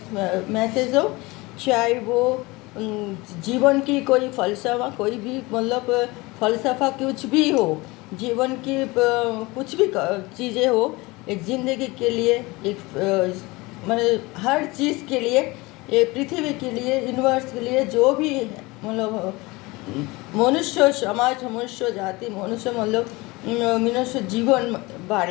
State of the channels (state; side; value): quieter; right; 22.9 dB